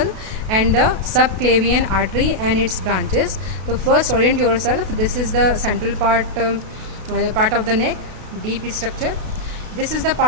and the subclavian artery and its branches. So first orient yourself. This is the central part of the neck, deep structure. This is the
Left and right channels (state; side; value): late; left; 32 ms